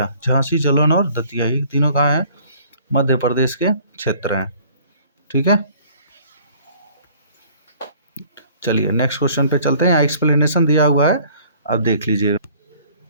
ये तीनों कहाँ हैं? मध्य प्रदेश के क्षेत्र हैं, ठीक है। चलिए नेक्स्ट क्वेश्चन पे चलते हैं। यहाँ एक्सप्लेनेशन दिया हुआ है, आप देख लीजिए।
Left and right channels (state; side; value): inverted; both; correlation -0.55